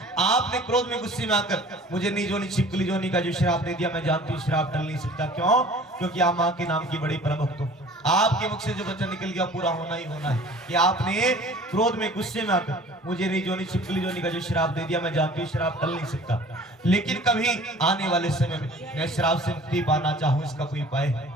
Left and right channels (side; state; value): both; normal; correlation 0.47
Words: आपने क्रोध में गुस्से में आकर मुझे नीच जोनी छिपकली जोनी का जो श्राप दे दिया, मैं जानती हूँ श्राप टल नहीं सकता। क्यों? क्योंकि आप माँ के नाम की बड़ी परम भक्त हो, आपके मुख से जो वचन निकल गया पूरा होना ही होना है। कि आपने क्रोध में गुस्से में आकर मुझे नीच जोनी छिपकली जोनी का जो श्राप दे दिया, मैं जानती हूँ श्राप टल नहीं सकता, लेकिन कभी आने वाले समय में मैं श्राप से मुक्ति पाना चाहूँ, इसका कोई उपाय है?